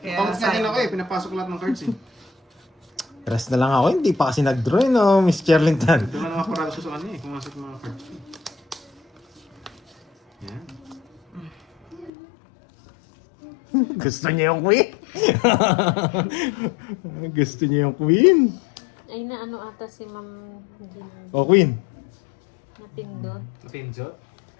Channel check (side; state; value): right; drops out; at 12.1 s